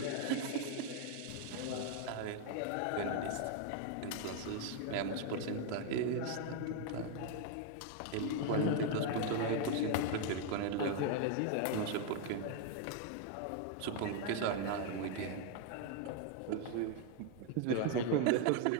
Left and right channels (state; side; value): different; both; correlation 0.00